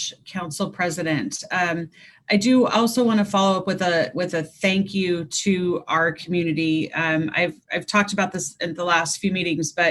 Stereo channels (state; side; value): identical; both; correlation 1.00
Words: Council President. I do also want to follow up with a thank you to our community. I've talked about this in the last few meetings,